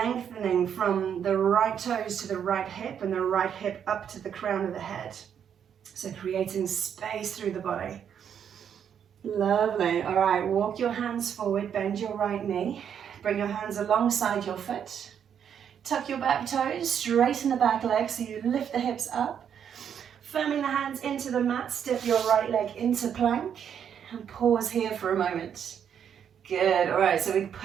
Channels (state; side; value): quieter; left; 8.4 dB